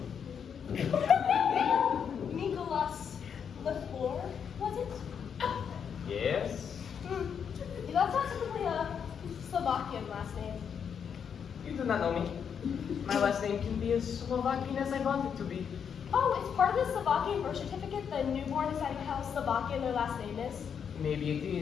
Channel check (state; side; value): quieter; right; 7.4 dB